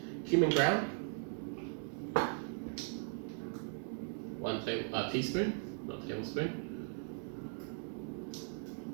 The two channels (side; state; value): left; silent; 52 dB below the other